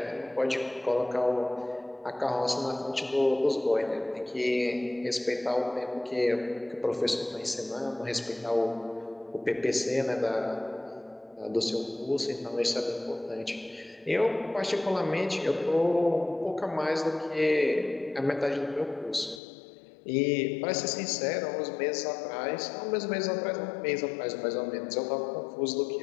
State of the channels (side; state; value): right; drops out; at 19.4 s